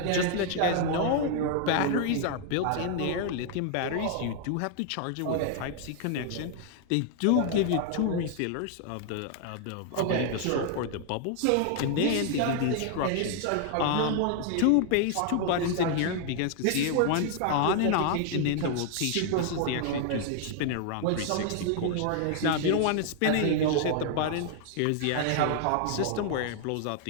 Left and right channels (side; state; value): both; different; correlation 0.00